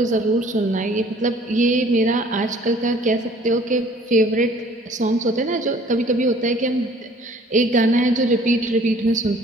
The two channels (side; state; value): both; normal; correlation 0.54